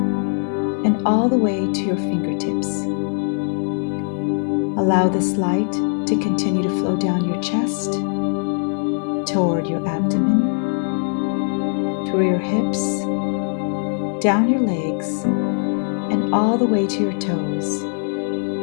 and all the way to your fingertips. Allow this light to continue to flow down your chest, toward your abdomen, through your hips, down your legs, and all the way to your toes,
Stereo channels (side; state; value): right; silent; 57 dB below the other